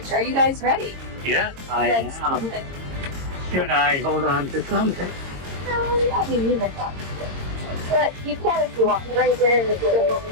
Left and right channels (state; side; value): late; left; 22 ms